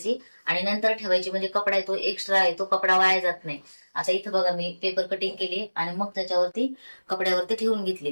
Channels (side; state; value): both; inverted; correlation -1.00